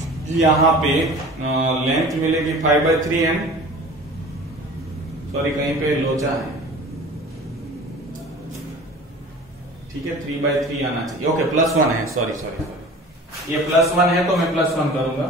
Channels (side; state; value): both; normal; correlation 0.41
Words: यहां पे लेंथ मिलेगी 5/3 एंड सॉरी कहीं पे लोचा है, ठीक है, 3/3 आना चाहिए, ओके +1 है, सॉरी ये +1 है तो मैं +1 करूंगा,